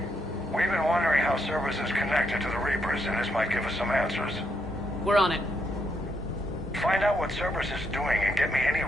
We've been wondering how Cerberus is connected to the Reapers, and this might give us some answers. We're on it. Find out what Cerberus is doing and get me any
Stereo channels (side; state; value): both; normal; correlation 0.78